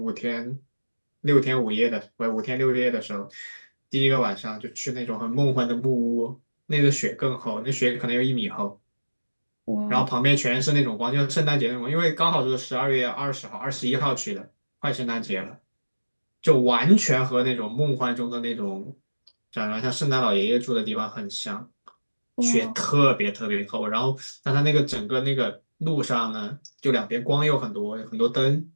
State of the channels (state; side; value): inverted; both; correlation -1.00